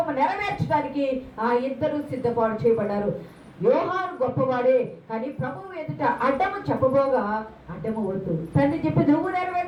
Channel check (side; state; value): both; identical; correlation 1.00